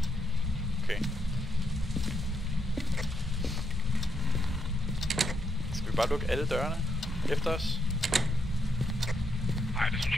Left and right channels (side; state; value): both; normal; correlation 0.79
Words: Okay. Skal vi bare lukke alle dørene efter os? Nej, det synes